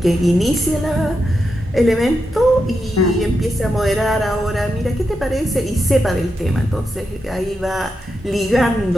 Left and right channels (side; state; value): both; normal; correlation 0.86